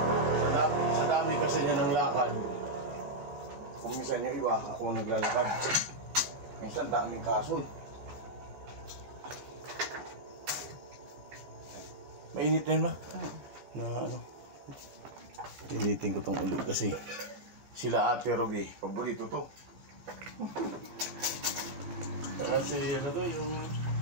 Sa dami kasi niya ng lakad. Kung minsan yung iba, ako ang naglalakad. Minsan daming kaso. Mainit na yun ba? Initin ko tong ulo kasi sila Ate Ruby, paborito to. Kasi yung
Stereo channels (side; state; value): left; late; 15 ms